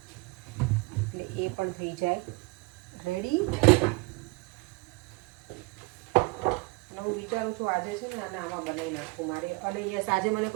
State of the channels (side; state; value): left; quieter; 26.4 dB